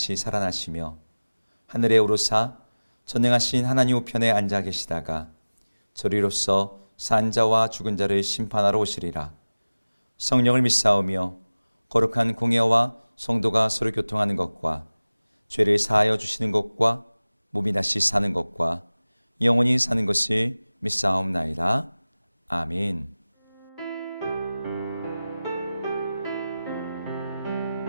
살아나시며 하늘에 오르사 전능하신 하나님 우편에 앉아 계시다가 저리로서 산 자와 죽은 자를 심판하러 오시리라. 성령을 믿사오며 거룩한 공예와 성도가 서로 교통하는 것과 죄를 사하여 주시는 것과 몸이 다시 사는 것과 영원히 사는 것을 믿사옵나이다. 아멘.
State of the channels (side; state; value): both; inverted; correlation -0.99